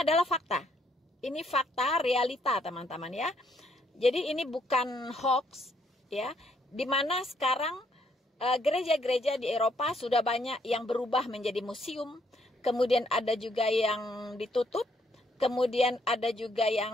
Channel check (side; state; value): both; normal; correlation 0.71